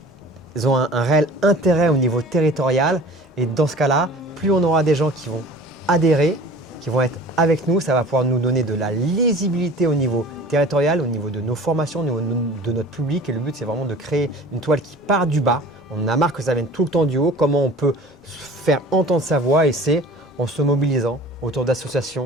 ont un réel intérêt au niveau territorial et dans ce cas-là, plus on aura des gens qui vont adhérer, qui vont être avec nous, ça va pouvoir nous donner de la lisibilité au niveau territorial, au niveau de nos formations, au niveau de notre public et le but c'est vraiment de créer une toile qui part du bas. On en a marre que ça vienne tout le temps du haut, comment on peut faire entendre sa voix et c'est en se mobilisant autour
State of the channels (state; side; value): normal; both; correlation 0.44